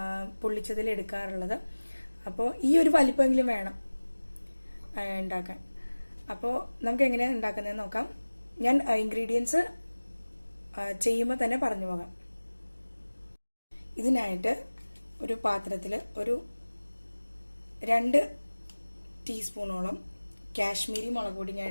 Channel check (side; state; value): both; inverted; correlation -1.00